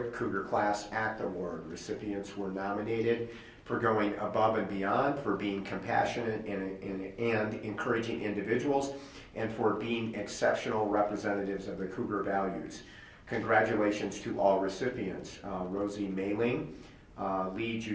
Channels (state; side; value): identical; both; correlation 1.00